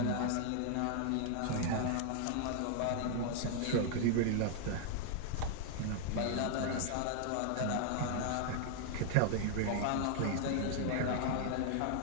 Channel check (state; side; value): different; both; correlation 0.00